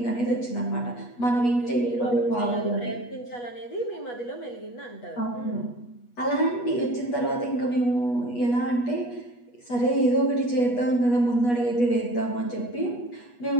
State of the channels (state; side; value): late; right; 8.3 ms